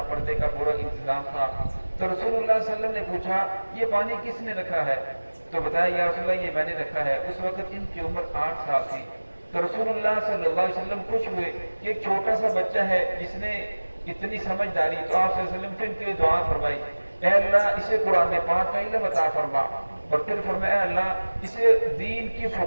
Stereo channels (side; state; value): both; inverted; correlation -1.00